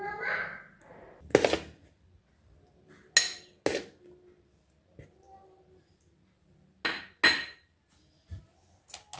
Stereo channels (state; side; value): identical; both; correlation 1.00